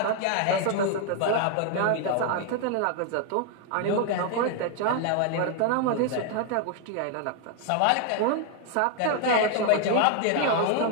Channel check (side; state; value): both; different; correlation 0.00